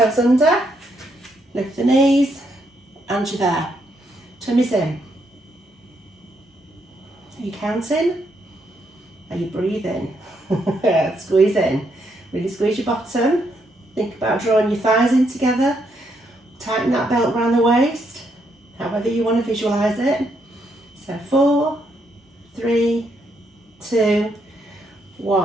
under, lift the knees, and you're there. Tummy's in. Are you counting? Are you breathing? Squeeze in. Really squeeze your bottom. Think about drawing your thighs in together. Tighten that belt around the waist, however you want to visualise it. So 4, 3, 2,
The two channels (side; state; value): both; normal; correlation 0.76